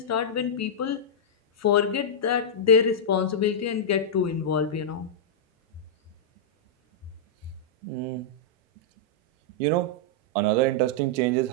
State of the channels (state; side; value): normal; both; correlation -0.09